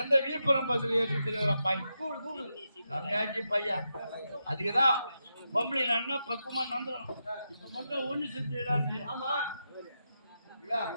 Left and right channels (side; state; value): both; inverted; correlation -0.86